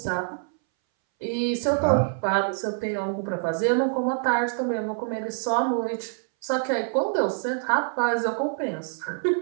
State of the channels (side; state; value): left; silent; 61 dB below the other